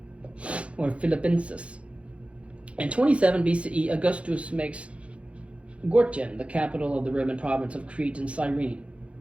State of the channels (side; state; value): left; late; 0.061 ms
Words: or Philippensis. In 27 BCE, Augustus makes Gortyn the capital of the Roman province of Crete and Cyrene.